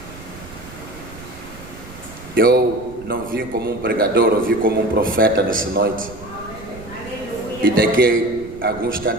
Eu não vim como um pregador, eu vim como um profeta nessa noite. E daqui a algum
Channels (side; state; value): right; noise; rumble, 17 dB below the sound